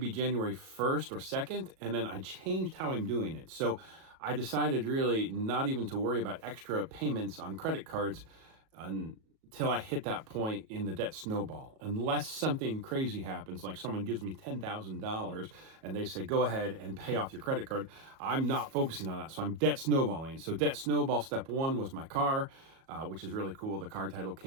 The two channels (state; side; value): late; left; 37 ms